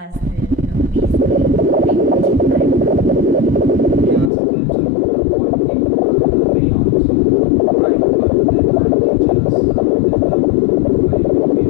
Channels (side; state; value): right; drops out; at 4.3 s